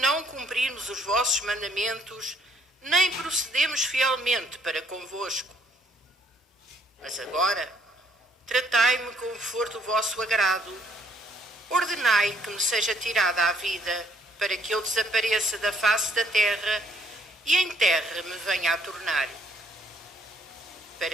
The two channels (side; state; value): both; normal; correlation 0.67